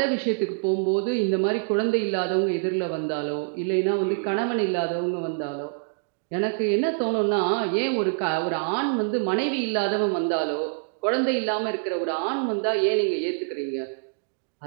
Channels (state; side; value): silent; left; digital silence